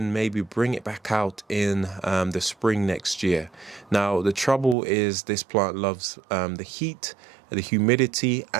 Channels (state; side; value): drops out; left; at 4.8 s